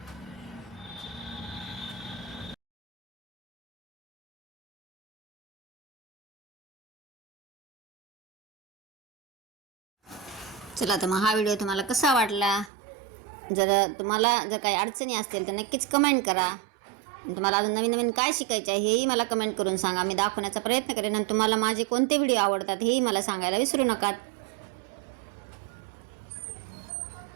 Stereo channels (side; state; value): left; drops out; at 12.7 s